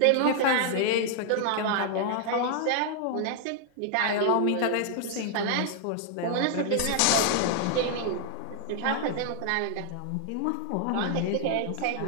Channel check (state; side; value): different; both; correlation 0.00